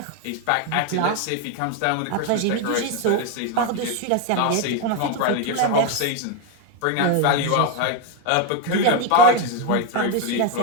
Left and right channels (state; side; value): different; both; correlation 0.02